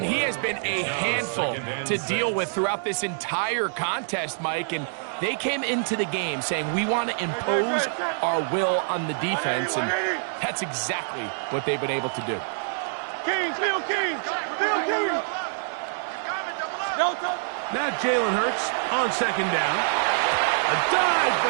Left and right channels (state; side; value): silent; left; digital silence